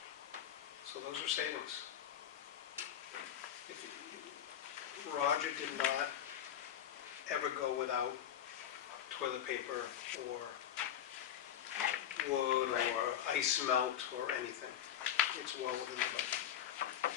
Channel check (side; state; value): right; quieter; 10.4 dB